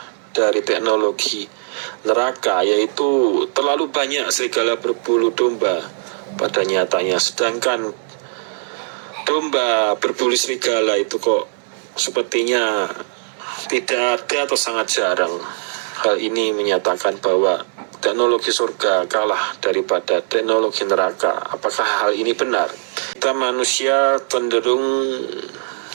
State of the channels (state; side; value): silent; left; digital silence